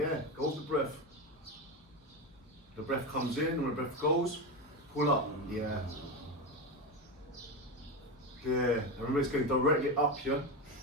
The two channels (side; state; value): both; normal; correlation 0.16